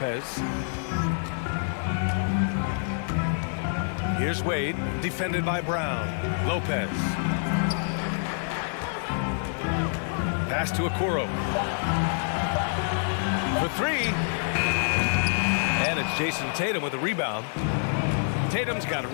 Here's Wade, defended by Brown. Lopez. Pass to Okoro. For three. And it's Jason Tatum with a rebound. Tatum's got a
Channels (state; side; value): silent; right; 60 dB below the other